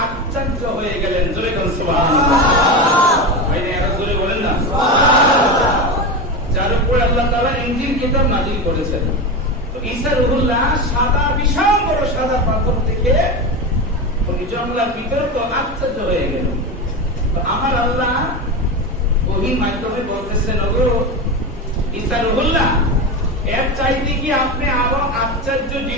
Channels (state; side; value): normal; both; correlation 0.20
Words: আশ্চর্য হয়ে গেলেন। জোরে বলুন সুবহানাল্লাহ। ভাইরা এরা জোরে বলেন না সুবহানাল্লাহ। যার উপর আল্লাহ তাআলা ইনজিল কিতাব নাযিল করেছেন। তো ঈসা রূহুল্লাহ সাদা বিশাল বড় সাদা পাথর দেখে উনি জঙ্গলের ভিতরে তো আশ্চর্য হয়ে গেল। তো আমার আল্লাহ ওহী মাধ্যমে বলতেছেন, ওগো ঈসা রূহুল্লাহ, এর চাইতে কি আপনি আরো আশ্চর্য